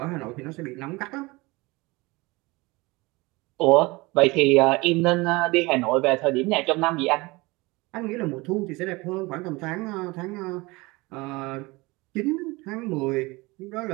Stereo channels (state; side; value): quieter; left; 23.3 dB